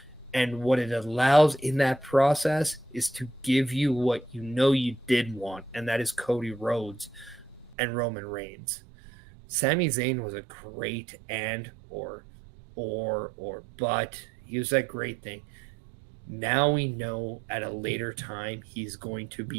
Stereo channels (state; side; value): drops out; left; at 7.8 s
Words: And what it allows in that process is to give you what you did want, and that is Cody Rhodes and Roman Reigns. Sami Zayn was a great but he was that great thing. Now we know at a later time he's going to